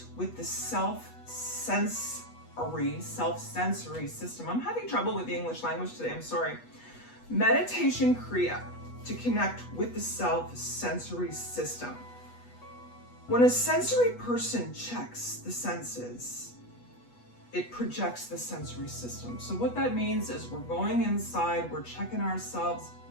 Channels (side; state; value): right; late; 8.2 ms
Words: with the self-sensory system. I'm having trouble with the English language today, I'm sorry. Meditation Kriya to connect with the self-sensory system. When a sensory person checks the senses, it projects the sensory system. So what that means is we're going inside, we're checking ourselves